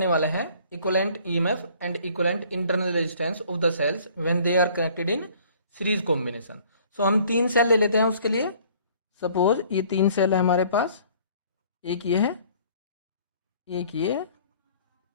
वाले हैं equivalent EMF and equivalent internal resistance of the cells when they are connected in series combination. So हम तीन सेल ले लेते हैं उसके लिए। सपोज ये तीन सेल है हमारे पास, एक ये है, एक ये,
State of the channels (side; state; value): both; inverted; correlation -0.55